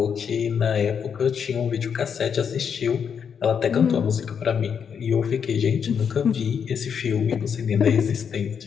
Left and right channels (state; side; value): quieter; right; 7.1 dB